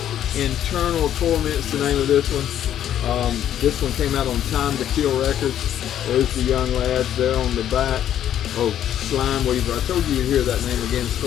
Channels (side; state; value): right; quieter; 10.7 dB